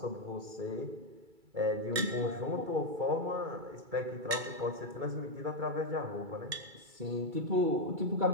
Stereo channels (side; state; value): left; late; 2.3 ms